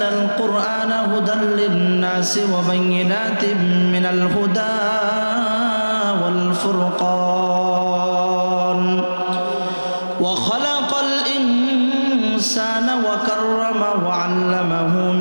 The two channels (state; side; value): inverted; both; correlation -1.00